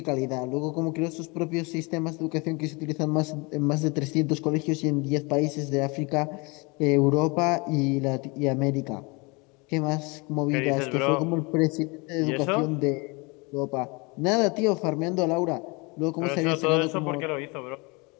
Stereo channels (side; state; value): right; quieter; 28.0 dB